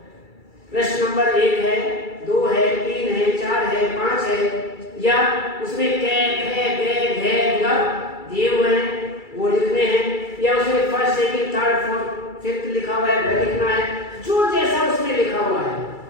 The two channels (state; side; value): late; right; 2.3 ms